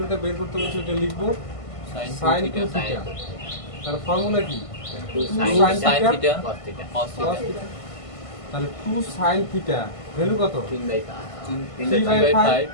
বের করতে বলছি এটা লিখবো sin 2 থিটা। তার ফর্মুলা কি? 2 sin sin theta cos theta cos cos theta theta. তাহলে 2 sin থিটা ভ্যালু কত? 3/5 3/5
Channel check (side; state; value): right; late; 1.5 ms